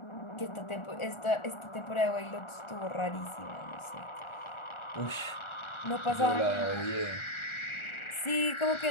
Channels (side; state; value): right; late; 1.4 ms